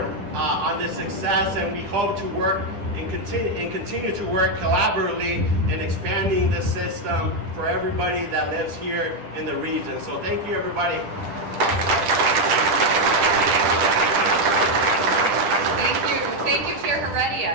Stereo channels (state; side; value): late; left; 9.9 ms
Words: on this success, and we hope to work and continue to work collaboratively in expanding the system for everybody that lives here in the region. So thank you, everybody. Thank you, Chair